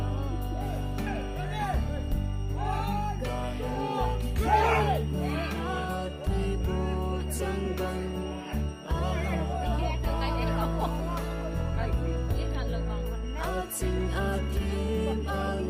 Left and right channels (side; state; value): both; identical; correlation 1.00